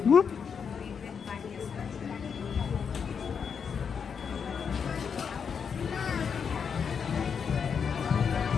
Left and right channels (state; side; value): quieter; right; 6.6 dB